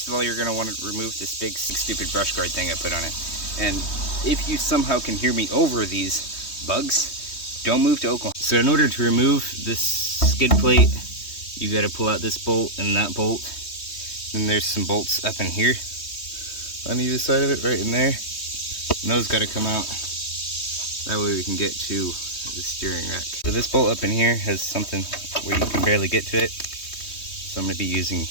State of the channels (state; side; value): late; right; 3.2 ms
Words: of all, you're going to want to remove this big stupid brush guard thing I put on it. And if you somehow can hear me over these bugs, don't move to Oklahoma. So in order to remove this skid plate, you got to pull out this bolt and that bolt. Then there's some bolts up in here on either side of it, right in there. And those got to come out. That way we can get to the steering rack. So this bolt up in here has something where you can barely get to it. So I'm going to be using